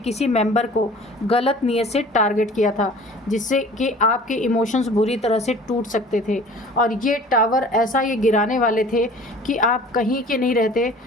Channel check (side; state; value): both; normal; correlation 0.46